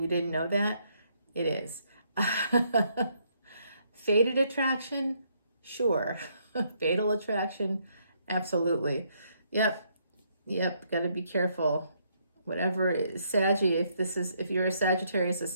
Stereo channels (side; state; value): both; inverted; correlation -0.72